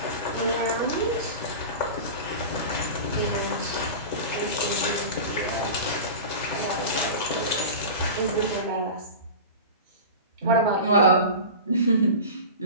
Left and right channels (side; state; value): both; inverted; correlation -0.31